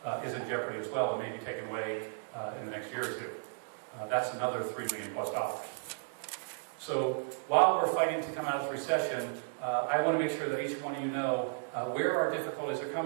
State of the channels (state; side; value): silent; left; digital silence